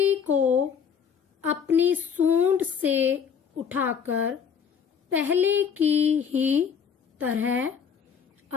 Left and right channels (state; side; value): quieter; right; 7.1 dB